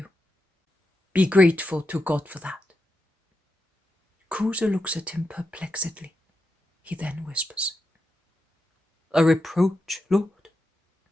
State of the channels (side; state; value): both; normal; correlation 0.87